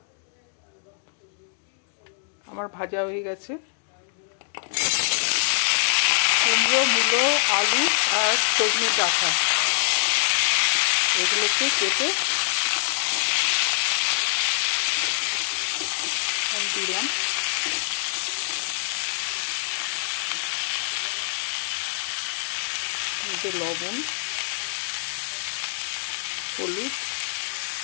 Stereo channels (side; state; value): right; silent; digital silence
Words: আমার ভাজা হয়ে গেছে। কুমড়ো, মূলো, আলু আর সজনে ডাঁটা এগুলোকে কেটে দিলাম। লবণ, হলুদ,